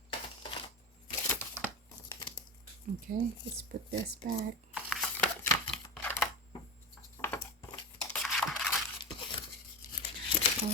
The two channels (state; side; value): normal; both; correlation 0.23